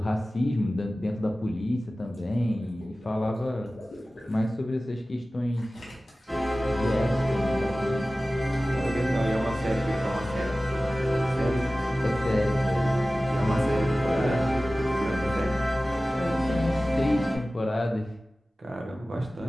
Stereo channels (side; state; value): both; normal; correlation 0.96